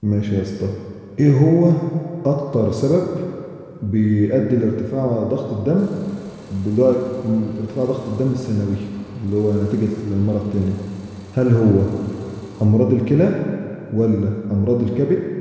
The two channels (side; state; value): both; identical; correlation 1.00